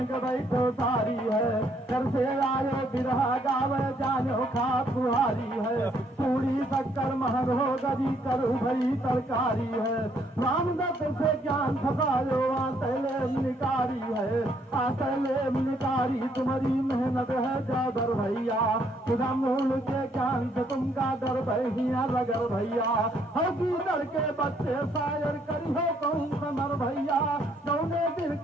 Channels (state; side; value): normal; both; correlation 0.69